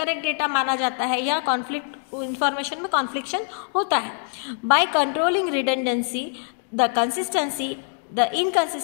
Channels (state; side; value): silent; right; 63 dB below the other